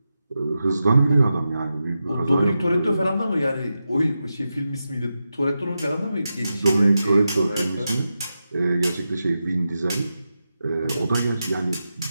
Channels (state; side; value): inverted; both; correlation -0.90